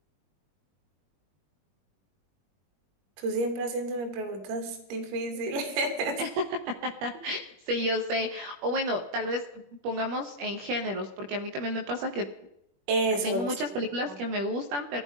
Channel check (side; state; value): left; late; 21 ms